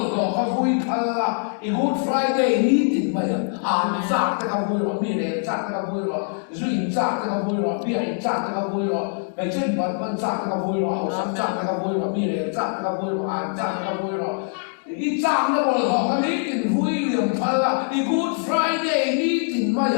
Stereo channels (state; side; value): silent; right; 55 dB below the other